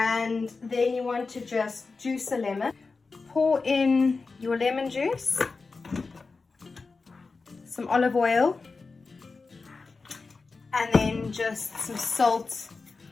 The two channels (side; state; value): right; quieter; 4.2 dB